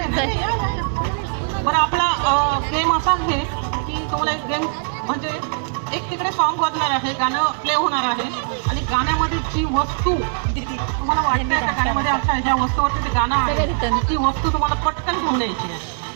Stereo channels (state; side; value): silent; left; digital silence